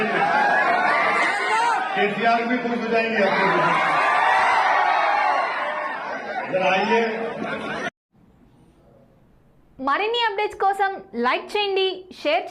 लिए। केसीआर भी खुश हो जाएंगे आपके, जरा आइए। మరిన్ని అప్డేట్స్ కోసం లైక్ చేయండి, షేర్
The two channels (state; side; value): identical; both; correlation 1.00